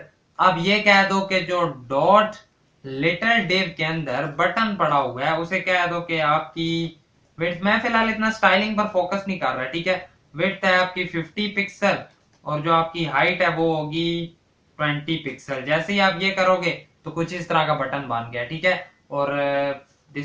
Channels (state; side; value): identical; both; correlation 1.00